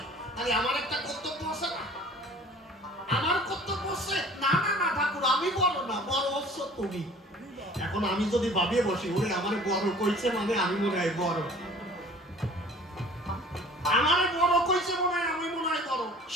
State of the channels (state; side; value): normal; both; correlation 0.48